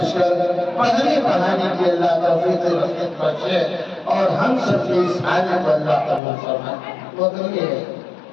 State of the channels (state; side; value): drops out; right; at 6.2 s